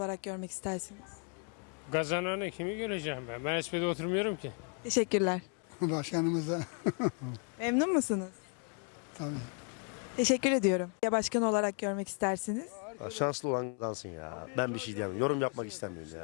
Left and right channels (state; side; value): quieter; right; 38.4 dB